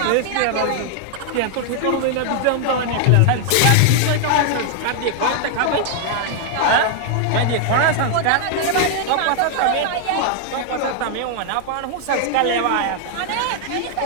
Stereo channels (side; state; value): both; different; correlation 0.00